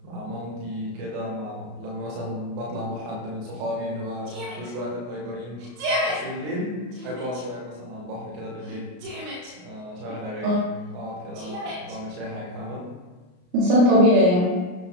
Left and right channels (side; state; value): left; late; 33 ms